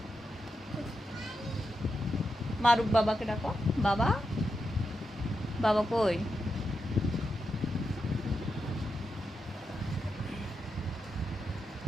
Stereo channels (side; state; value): both; normal; correlation 0.86